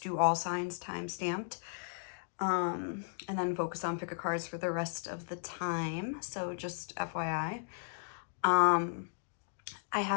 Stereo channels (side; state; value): right; silent; digital silence